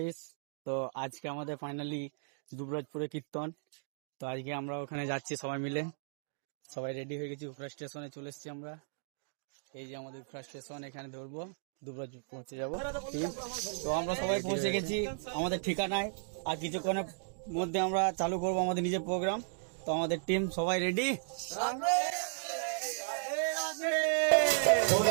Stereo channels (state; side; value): silent; left; digital silence